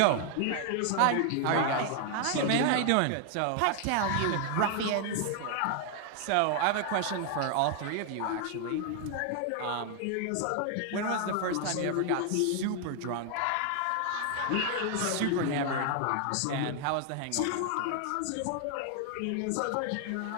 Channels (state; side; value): different; both; correlation 0.00